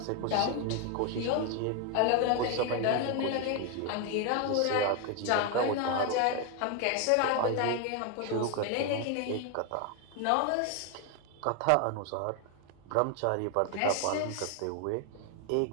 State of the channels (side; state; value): both; different; correlation 0.01